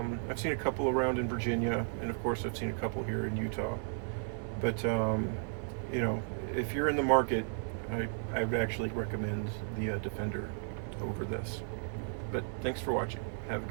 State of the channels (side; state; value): left; silent; 55 dB below the other